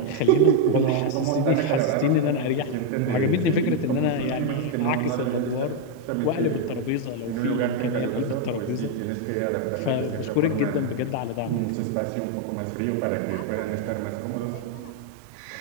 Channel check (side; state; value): both; different; correlation 0.01